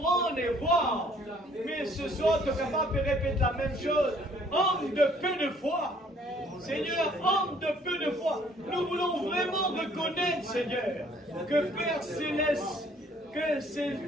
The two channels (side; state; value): both; normal; correlation 0.60